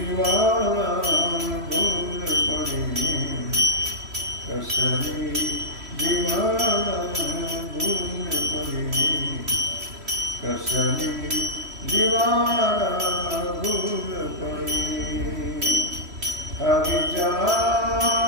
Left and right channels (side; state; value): left; late; 3.1 ms